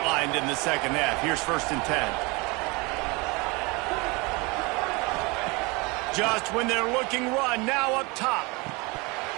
in the second half. Here's 1st and 10. Just when they're looking run, now up top.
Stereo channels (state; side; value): quieter; left; 26.8 dB